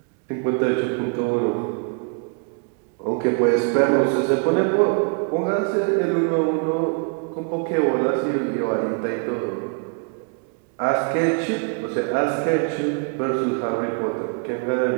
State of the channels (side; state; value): left; quieter; 39.3 dB